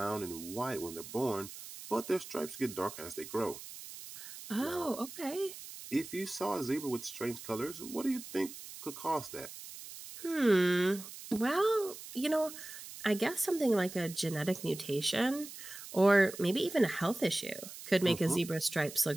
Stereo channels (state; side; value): noise; right; hiss, 13 dB below the sound